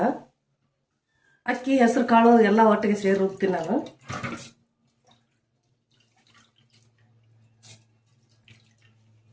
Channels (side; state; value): both; identical; correlation 1.00